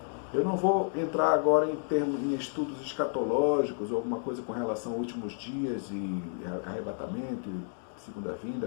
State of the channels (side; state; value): right; silent; digital silence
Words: Eu não vou entrar agora em estudos escatológicos ou alguma coisa com relação aos últimos dias e arrebatamento, e segunda